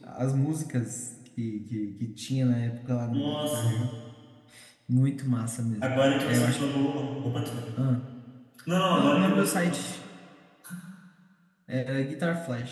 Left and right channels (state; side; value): identical; both; correlation 1.00